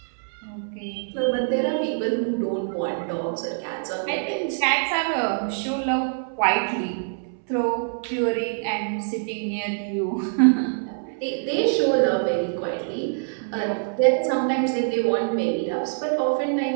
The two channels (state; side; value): silent; left; 62 dB below the other